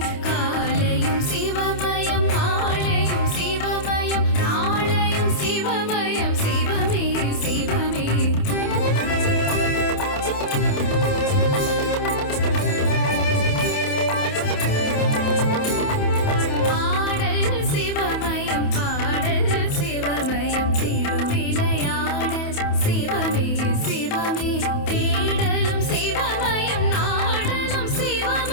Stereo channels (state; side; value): late; right; 28 ms